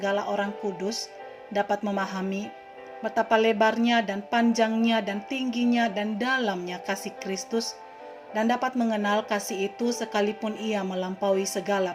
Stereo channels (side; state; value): both; identical; correlation 1.00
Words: orang kudus dapat memahami betapa lebarnya dan panjangnya dan tingginya dan dalamnya kasih Kristus, dan dapat mengenal kasih itu sekalipun ia melampaui segala